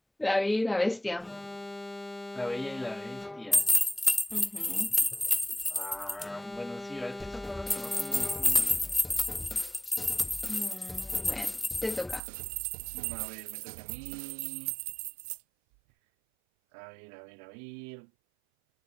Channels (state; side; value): drops out; left; at 12.2 s